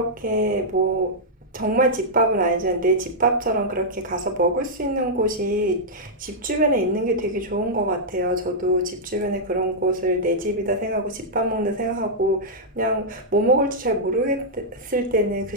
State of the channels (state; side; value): normal; both; correlation -0.07